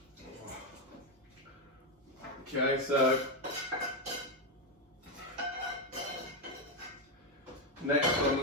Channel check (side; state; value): both; normal; correlation 0.06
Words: Okay, so next on